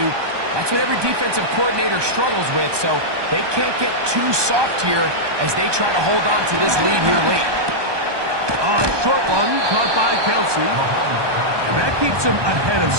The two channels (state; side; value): late; left; 1.2 ms